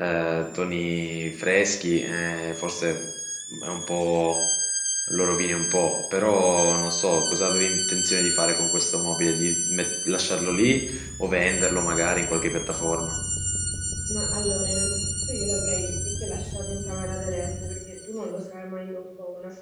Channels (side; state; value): both; identical; correlation 1.00